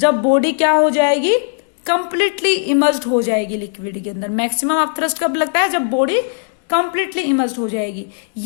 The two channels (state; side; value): silent; right; digital silence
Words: बॉडी क्या हो जाएगी, कंप्लीटली इमर्स्ड हो जाएगी लिक्विड के अंदर। मैक्सिमम अपथ्रस्ट कब लगता है, जब बॉडी कंप्लीटली इमर्स्ड हो जाएगी।